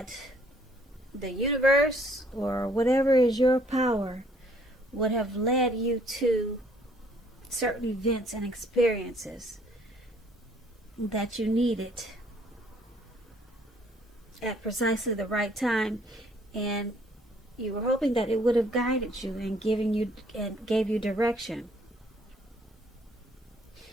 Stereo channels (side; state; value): both; normal; correlation 0.63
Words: the universe or whatever is your power would have led you to certain events and experiences that you needed at precisely the right time, and you were hoping that it would have guided you and gave you direction.